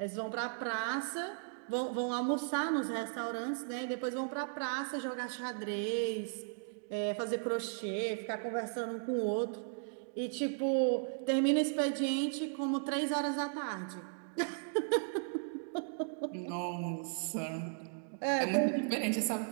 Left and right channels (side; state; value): left; silent; digital silence